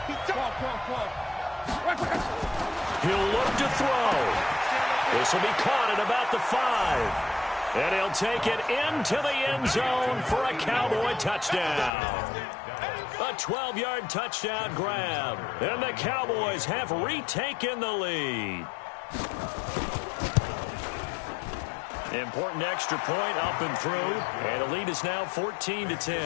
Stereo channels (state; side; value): drops out; right; at 11.9 s